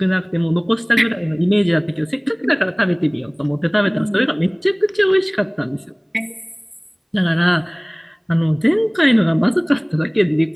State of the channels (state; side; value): identical; both; correlation 1.00